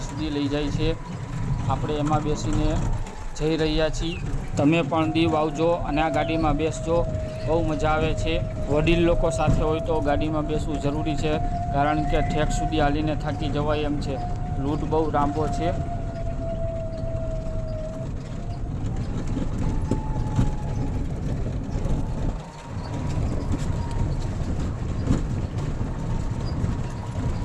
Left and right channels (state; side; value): identical; both; correlation 1.00